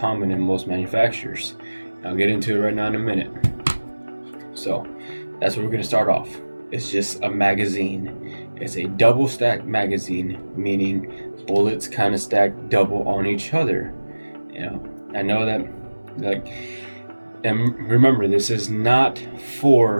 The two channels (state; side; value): inverted; both; correlation -1.00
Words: in most manufacturers. I'll get into it right now in a minute. So that's what we're gonna start off. It's just a magazine. It's a double stack magazine, meaning bullets kind of stack double on each other. I know that, and remember, this is not